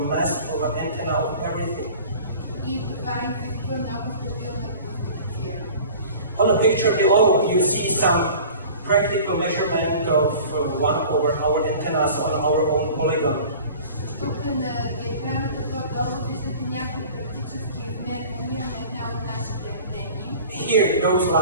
of an antenna, of everything. On the picture below, you see some practical measurement of one of our antennas on our own polygon. Тук на диаграмата по-долу виждате някои практически измервания на една от нашите антени. Here, those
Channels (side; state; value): both; inverted; correlation -0.43